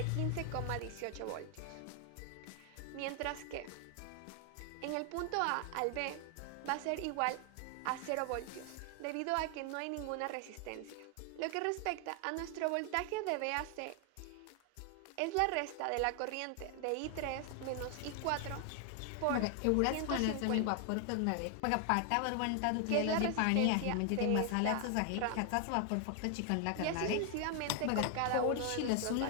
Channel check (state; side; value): different; both; correlation 0.00